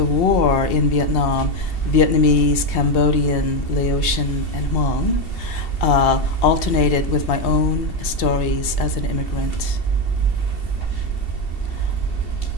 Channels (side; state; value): right; late; 2.7 ms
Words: war in Vietnam, Vietnamese, Cambodian, Laotian, and Hmong, alternated with my own stories as an immigrant.